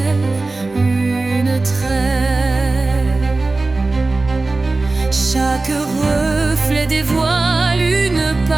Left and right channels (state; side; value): quieter; left; 3.3 dB